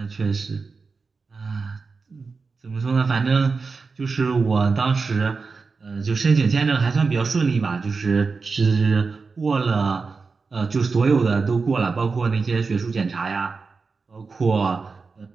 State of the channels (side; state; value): left; quieter; 4.5 dB